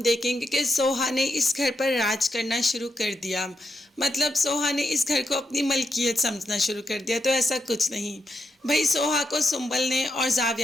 देखेंगे कि सोहा ने इस घर पर राज करना शुरू कर दिया। मतलब सोहा ने इस घर को अपनी मलकियत समझना शुरू कर दिया। तो ऐसा कुछ नहीं भाई, सोहा को सुंबल ने और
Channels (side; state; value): both; normal; correlation 0.83